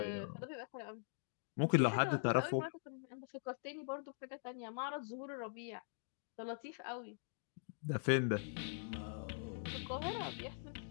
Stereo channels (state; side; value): silent; right; digital silence